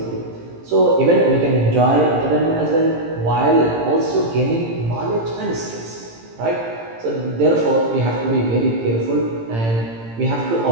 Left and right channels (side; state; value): left; late; 18 ms